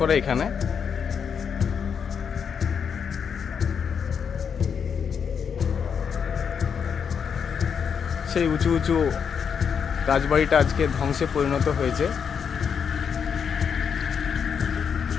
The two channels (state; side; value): quieter; right; 6.9 dB